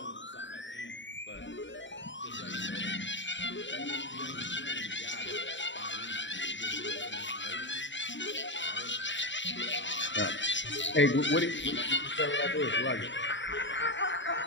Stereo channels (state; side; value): late; right; 0.54 ms